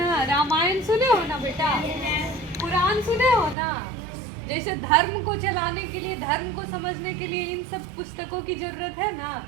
रामायण सुने हो ना बेटा, कुरान सुने हो ना। जैसे धर्म को चलाने के लिए, धर्म को समझने के लिए इन सब पुस्तकों की जरूरत है ना,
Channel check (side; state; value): left; drops out; at 3.6 s